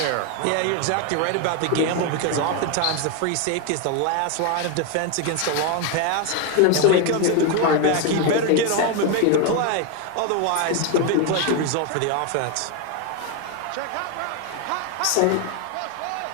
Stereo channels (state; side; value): different; both; correlation 0.01